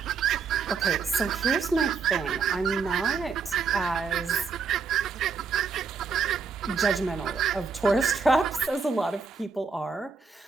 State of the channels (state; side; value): quieter; left; 5.2 dB